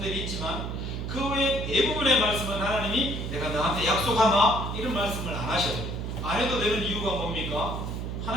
있지만 그 외에 대부분의 말씀은 하나님이 내가 너한테 약속하나? 이런 말씀을 안 하셔요. 안 해도 되는 이유가 뭡니까?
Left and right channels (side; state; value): right; noise; hum, 4 dB below the sound